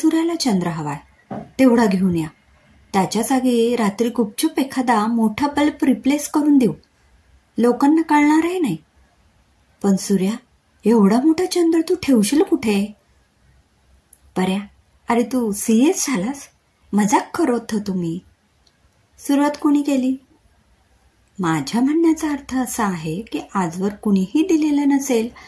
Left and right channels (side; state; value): both; identical; correlation 1.00